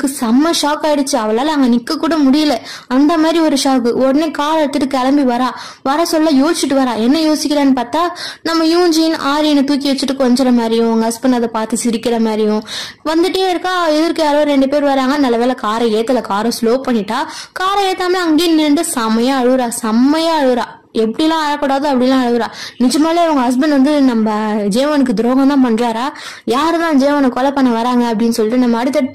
செம்ம ஷாக் ஆயிடுச்சு, அவளால அங்க நிக்க கூட முடியல, அந்த மாதிரி ஒரு ஷாக்கு. உடனே கார் எடுத்துட்டு கிளம்பி வர சொல்ல யோசிச்சுட்டு வரா. என்ன யோசிக்கிறான்னு பார்த்தா, நம்ம யூன்ஜின் ஆரியனை தூக்கி வச்சுட்டு கொஞ்சற மாதிரியும் உங்க ஹஸ்பண்ட் அதை பார்த்து சிரிக்கிற மாதிரியும் வந்துட்டே இருக்கா. எதிர்க்கு யாரோ 2 பேர் வராங்க. நல்ல வேலை காரை ஏத்தல, காரை ஸ்லோ பண்ணிட்டா. காரை ஏத்தாம அங்கேயே நின்று செம்மையா அழுறா. எப்படிலாம் அழக்கூடாது அப்படிலாம் அழுகுறா. நிஜமாலே அவங்க ஹஸ்பண்ட் வந்து நம்ம ஜேவனுக்கு துரோகம் தான் பண்றாரா, யாருதான் ஜேவனை கொலை பண்ண வராங்க அப்படின்னு சொல்லிட்டு நம்ம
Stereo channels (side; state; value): both; identical; correlation 1.00